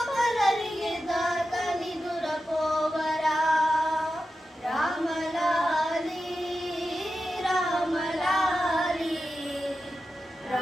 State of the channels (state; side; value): normal; both; correlation 0.91